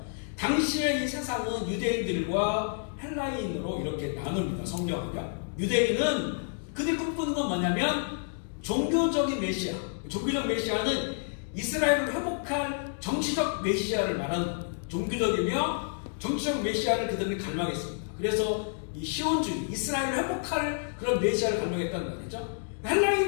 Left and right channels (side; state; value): right; silent; digital silence